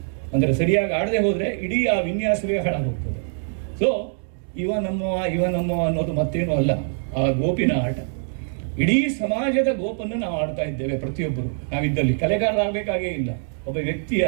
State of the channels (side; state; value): left; silent; digital silence